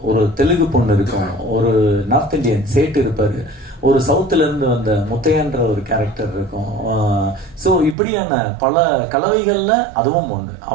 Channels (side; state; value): left; drops out; at 8.0 s